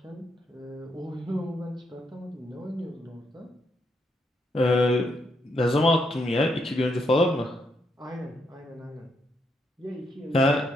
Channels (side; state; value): both; normal; correlation 0.78